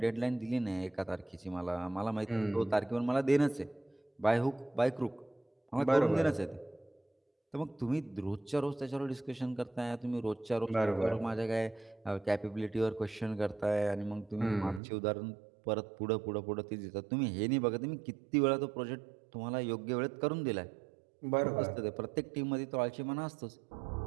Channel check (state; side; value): drops out; left; at 14.8 s